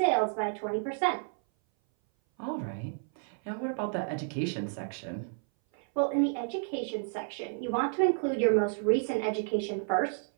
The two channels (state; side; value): silent; left; 57 dB below the other